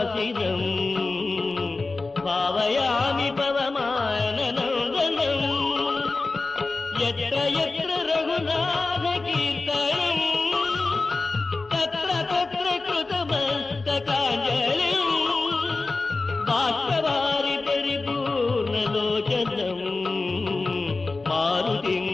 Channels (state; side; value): quieter; right; 3.6 dB